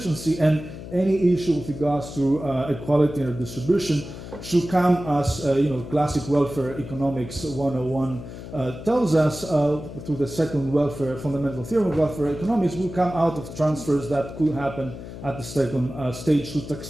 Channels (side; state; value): left; noise; hum, 12 dB below the sound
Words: and any issue with regards to equality and distribution should come as, classic welfare economics 101 tells us, through the second fundamental theorem of welfare economics, will come out of transfers that could happen at the second stage through